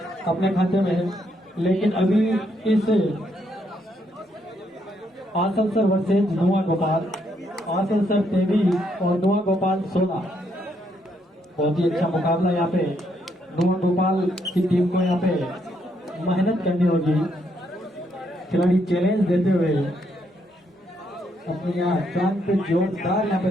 अपने खाते में, लेकिन अभी इस आसनसोल वर्सेज नुआ गोपाल, आसनसोल 23 और नुआ गोपाल 16। बहुत ही अच्छा मुकाबला यहाँ पे। नुआ गोपाल की टीम को यहाँ पे मेहनत करनी होगी। खिलाड़ी चैलेंज देते हुए अपने यहाँ जान पे जोरदार यहाँ पे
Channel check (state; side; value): normal; both; correlation 0.75